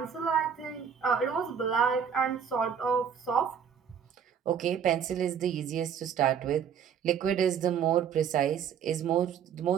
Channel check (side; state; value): left; quieter; 7.7 dB